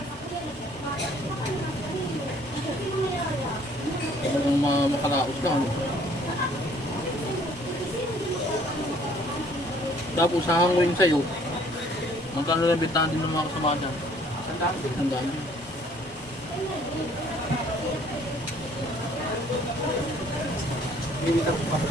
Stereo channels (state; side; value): normal; both; correlation 0.59